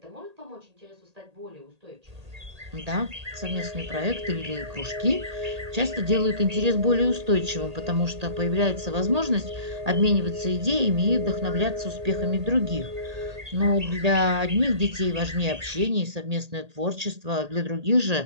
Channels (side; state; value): left; late; 1.8 ms